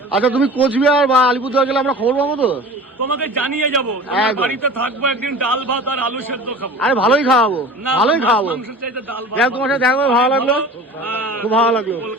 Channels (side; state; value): both; normal; correlation 0.39